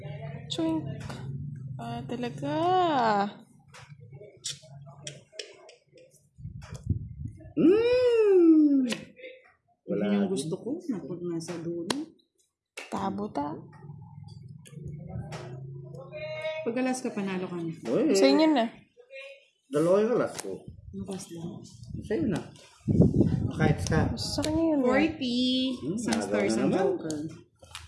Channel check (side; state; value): both; identical; correlation 1.00